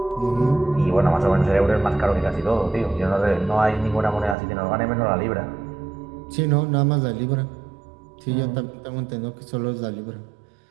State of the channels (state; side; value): drops out; left; at 4.4 s